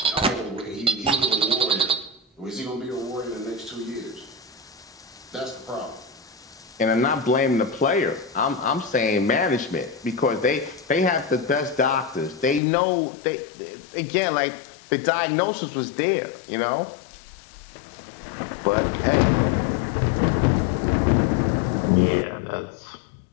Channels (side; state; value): right; drops out; at 12.6 s